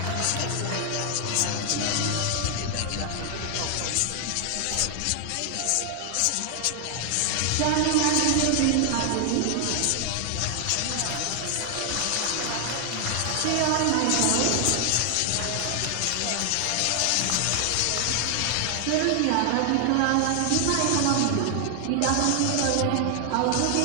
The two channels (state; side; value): different; both; correlation 0.00